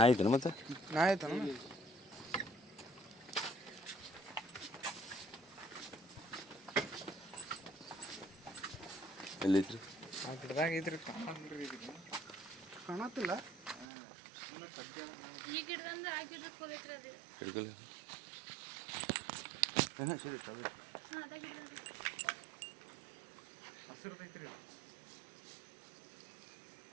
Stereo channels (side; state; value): left; drops out; at 13.9 s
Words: ಐತೇನು ಮತ್ತೆ ನಾ ಆಯ್ತಾನ ಎಲ್ಲೈತ್ರಿ ಆ ಗಿಡದಾಗ ಐತ್ರಿ ಕಾಣತ್ತಿಲ್ಲ. ಈ ಗಿಡದಿಂದ ಆ ಗಿಡಕ್ಕೆ ಹೋಗೈತ್ರಿ ಅದು. ಹಿಡ್ಕಲ್ಲ ಹಾಂ ಸರಿ ಹಾಂ ಅದ ಗಿಡದಿಂದ ಹಸಿರುದೈತ್ರಿ.